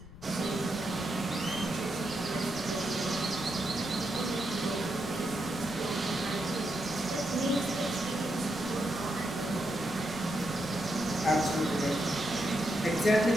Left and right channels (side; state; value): left; noise; rumble, 17 dB below the sound